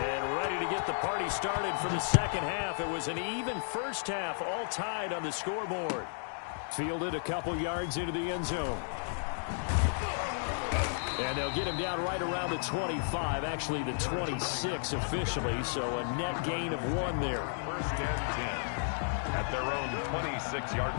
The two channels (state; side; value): silent; right; digital silence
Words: ready to get the party started for the second half. It was an even first half, all tied on the scoreboard. Fielded a couple yards into the end zone. And they'll get him down right around the 25, actually the 26 officially, so a net gain of 1 there. 1st and 10 at their own 26-yard